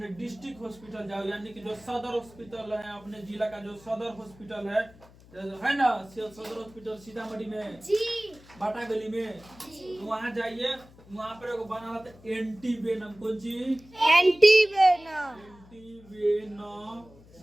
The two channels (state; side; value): noise; left; hum, 23 dB below the sound